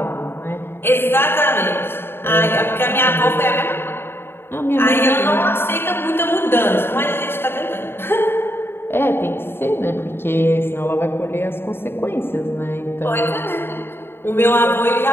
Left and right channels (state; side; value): late; right; 0.11 ms